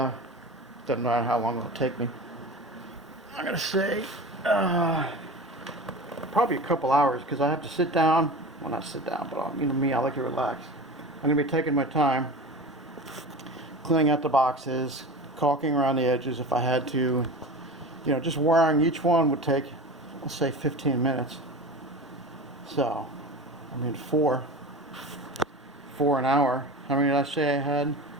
matter how long it'll take me. I'm gonna say probably a couple hours, because I have to sit down. Well, not sit down, but you know me, I like to relax. I'm gonna be taking my time, cleaning out the boxes, caulking around the edges if I had to. You know, just wiring each one would take, let's say, 15 minutes. So, I mean, 4 an hour. How many did I say I had?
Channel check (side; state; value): both; normal; correlation 0.32